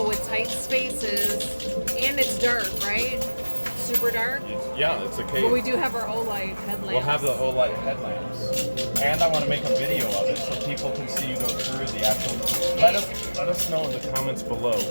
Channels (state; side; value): inverted; both; correlation -1.00